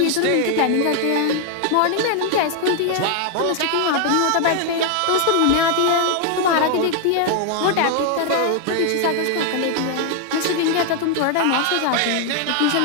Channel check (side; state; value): both; different; correlation 0.00